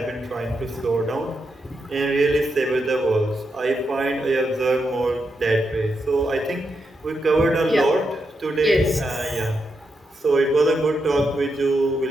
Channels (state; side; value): normal; both; correlation 0.84